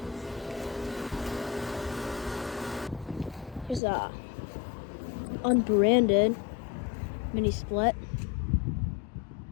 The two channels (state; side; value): drops out; right; at 3.8 s